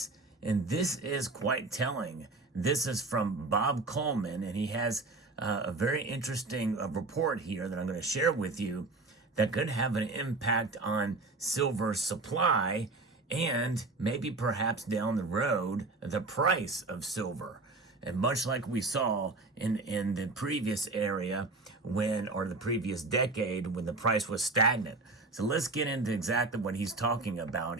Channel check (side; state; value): left; quieter; 3.3 dB